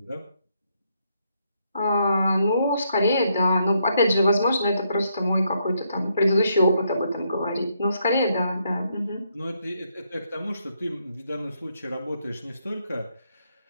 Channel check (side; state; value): both; inverted; correlation -0.76